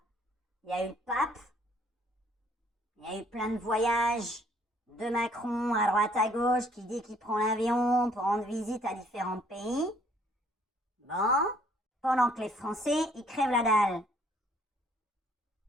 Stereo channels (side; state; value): both; normal; correlation 0.62